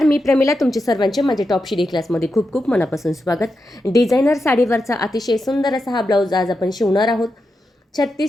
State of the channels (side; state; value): both; normal; correlation 0.87